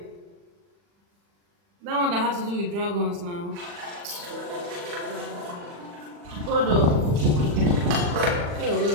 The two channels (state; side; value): late; left; 40 ms